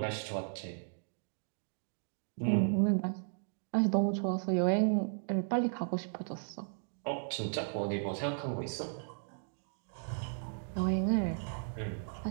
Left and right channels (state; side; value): silent; left; digital silence